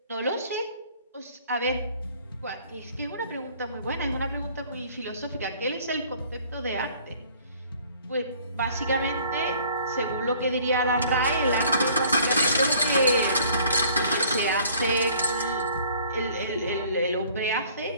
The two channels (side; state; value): both; inverted; correlation -0.55